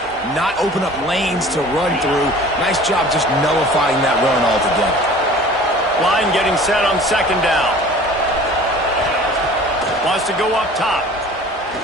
not open up lanes to run through. Nice job just nullifying that run altogether. Line getting set on 2nd down. Wants to go up top.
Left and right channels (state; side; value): normal; both; correlation 0.45